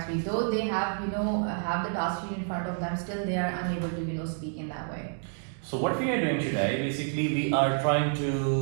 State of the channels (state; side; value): silent; left; 59 dB below the other